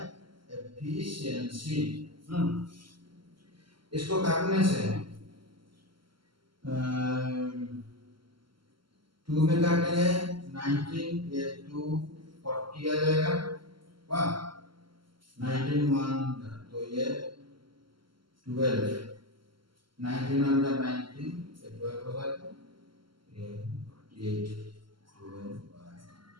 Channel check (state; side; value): late; left; 0.73 ms